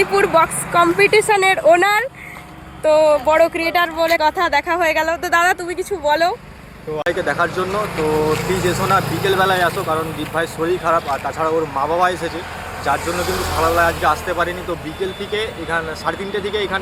বক্স কম্পিটিশনের ওনার। তো বড় ক্রিয়েটার বলে কথা, দেখা হয়ে গেল। তো দাদা তুমি কিছু বলো। তো ভাইকে দেখার জন্য তো প্লিজ এসো না, বিকেলবেলায় আসো, কারণ দীপ ভাইয়ের শরীর খারাপ, আর তাছাড়া ওর মা বাবা এসেছে, যার জন্য কিন্তু সকালবেলায় আজকে আসতে পারিনি। তো বিকেল থেকে এখানে 3:30 থেকে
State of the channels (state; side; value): identical; both; correlation 1.00